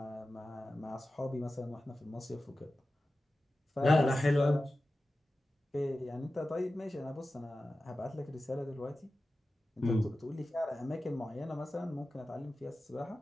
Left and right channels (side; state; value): both; normal; correlation 0.94